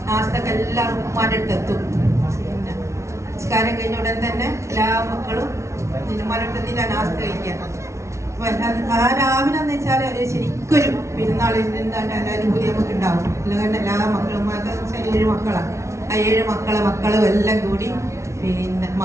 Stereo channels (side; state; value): left; late; 0.14 ms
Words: നാസ്തക്ക് എല്ലാവർക്കും ഉമ്മാന്റെ അടുത്ത് എത്തും. പിന്നെ നിസ്കാരം കഴിഞ്ഞ ഉടൻ തന്നെ എല്ലാ മക്കളും ഉമ്മാരെടുത്തിട്ട് നാസ്ത കഴിക്കാം. ആ രാവിലെ എന്ന് വെച്ചാൽ ശരിക്കൊരു പെരുന്നാളിന് അനുഭൂതി നമുക്ക് ഉണ്ടാവും. അല്ലെങ്കിൽ എല്ലാ മക്കളും 7 മക്കളാണ്. ആ 7 മക്കളും എല്ലാം കൂടി പിന്നെ